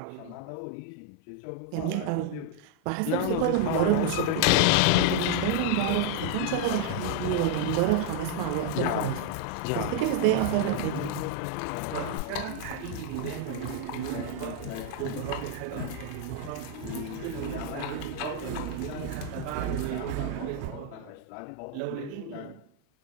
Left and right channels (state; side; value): different; both; correlation 0.00